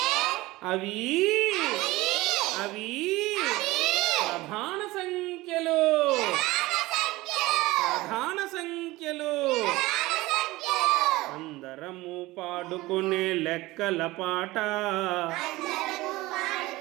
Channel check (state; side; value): quieter; left; 19.5 dB